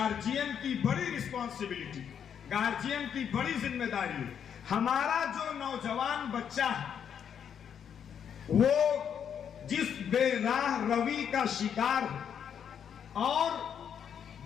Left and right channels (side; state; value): right; quieter; 8.1 dB